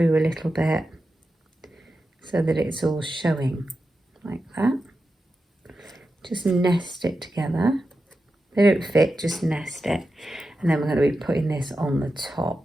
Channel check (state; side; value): normal; both; correlation 0.90